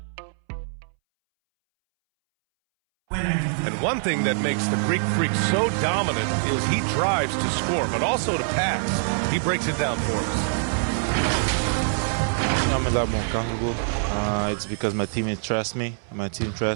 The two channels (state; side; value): silent; left; 62 dB below the other